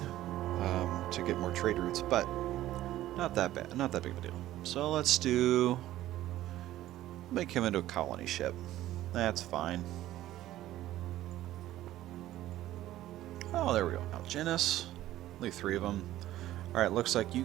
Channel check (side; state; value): left; quieter; 14.3 dB